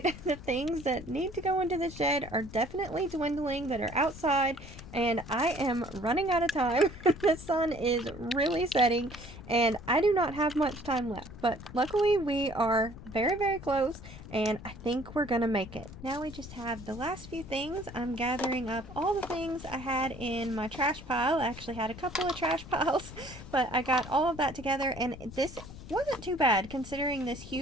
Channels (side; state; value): left; noise; rumble, 14 dB below the sound